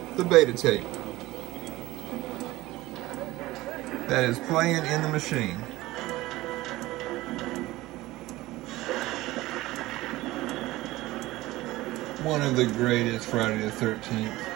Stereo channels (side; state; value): left; quieter; 18.2 dB